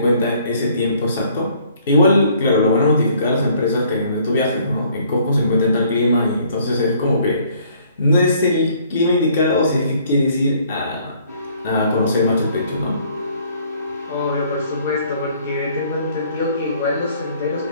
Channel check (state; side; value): inverted; both; correlation -0.61